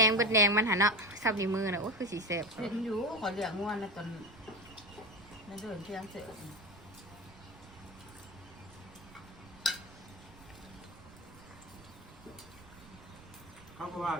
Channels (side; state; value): right; noise; rumble, 20 dB below the sound